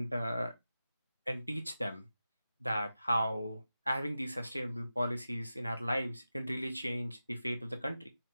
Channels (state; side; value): inverted; both; correlation -0.93